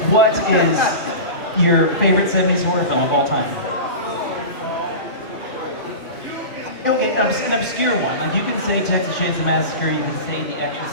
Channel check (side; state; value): right; late; 2.6 ms